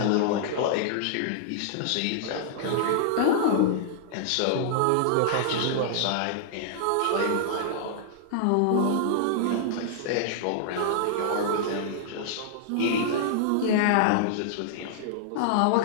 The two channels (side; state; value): both; different; correlation -0.01